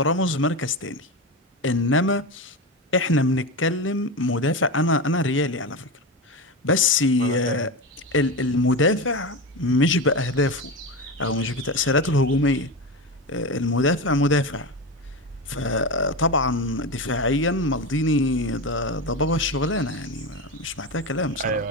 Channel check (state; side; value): normal; both; correlation 0.20